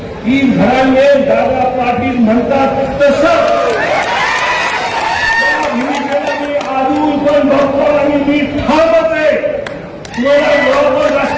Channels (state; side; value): identical; both; correlation 1.00